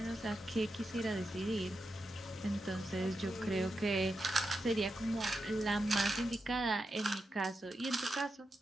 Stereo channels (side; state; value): both; normal; correlation 0.88